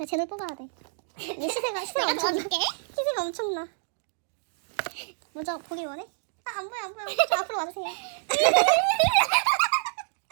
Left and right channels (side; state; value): left; silent; digital silence